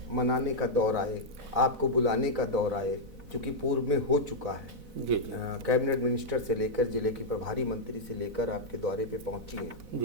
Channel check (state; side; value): late; left; 4.0 ms